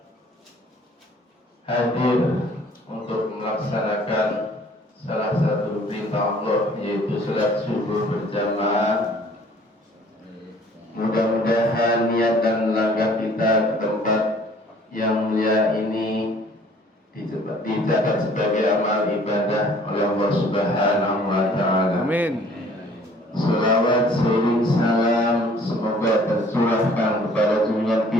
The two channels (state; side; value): normal; both; correlation 0.55